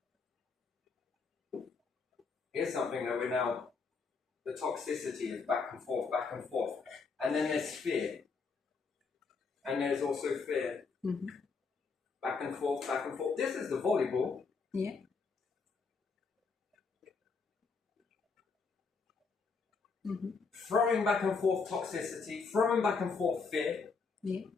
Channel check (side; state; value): right; quieter; 4.8 dB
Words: Here's something that we're now The toxicity is back and forth, back and forth. And then there's fear. And there's also fear. Mm-hmm. Back and forth, back and forth. This is the volleyball. Yeah. Mm-hmm. Throwing back and forth toxicity, throwing back and forth fear. Yeah.